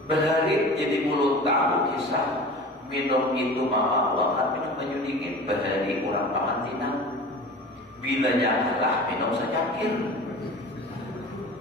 Berhari jadi mulut tahu kisah minum itu mama buahkan minum baju dingin berhari kurang pamantinan. Bilanya kalah minum secangkir.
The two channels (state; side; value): normal; both; correlation 0.37